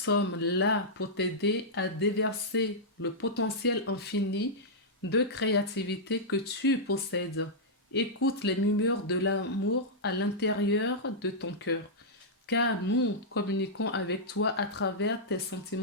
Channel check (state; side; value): normal; both; correlation -0.09